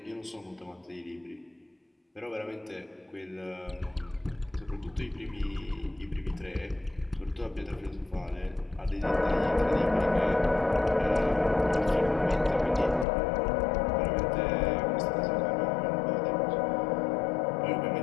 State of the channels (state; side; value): drops out; right; at 13.1 s